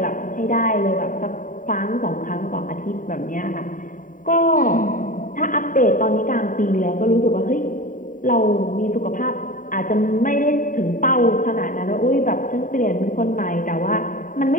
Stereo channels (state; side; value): late; right; 0.39 ms